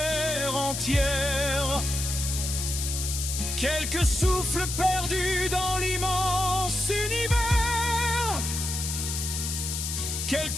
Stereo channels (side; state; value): left; noise; hiss, 3 dB below the sound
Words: entière. Quelques souffles perdus dans l'immense univers,